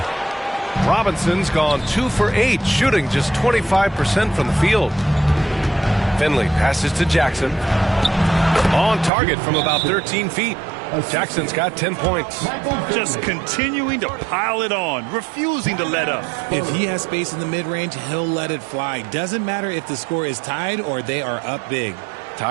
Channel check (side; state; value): left; drops out; at 9.1 s